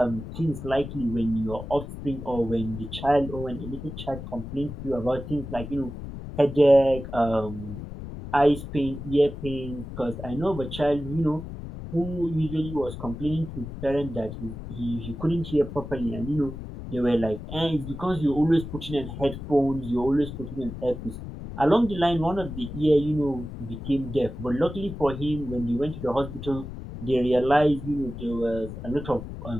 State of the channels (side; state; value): left; noise; rumble, 10 dB below the sound